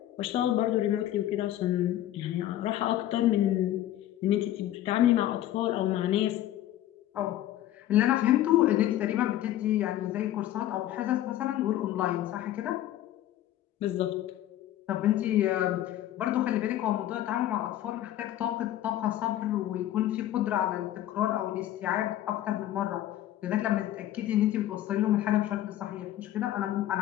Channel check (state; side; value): quieter; right; 13.2 dB